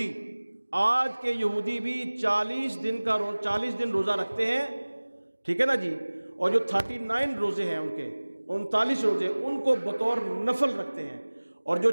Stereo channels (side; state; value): both; inverted; correlation -1.00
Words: آج کے یہودی بھی 40 دن روزہ رکھتے ہیں، ٹھیک ہے نا جی۔ اور جو 39 روزے ہیں ان کے، 39 روزے ان کو بطور نفل رکھتے ہیں، اور جو